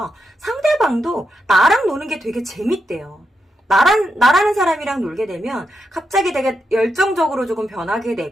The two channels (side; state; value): both; normal; correlation 0.85